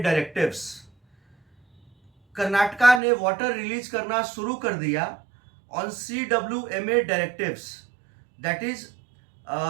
directives. Karnataka ने water release करना शुरू कर दिया on CWMA directives. That is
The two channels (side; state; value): left; drops out; at 3.0 s